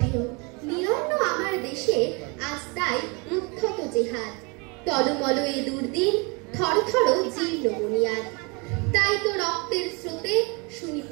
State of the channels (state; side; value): quieter; left; 30.3 dB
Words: ঢেউ। নিরন্ন আমার দেশে আজ তাই উদ্ধত জেহাদ, টলমল এ দুর্দিন, থরথর জীর্ণ বুনিয়াদ। তাই তো রক্তের স্রোতে শুনি